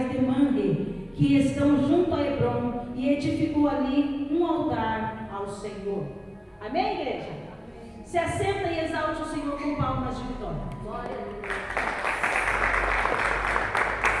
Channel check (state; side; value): identical; both; correlation 1.00